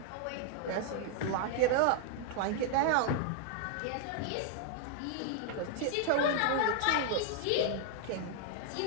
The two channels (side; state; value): both; different; correlation 0.00